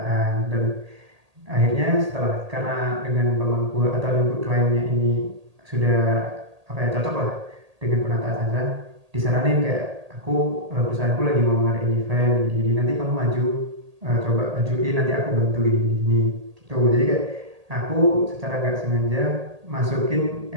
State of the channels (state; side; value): late; left; 1.8 ms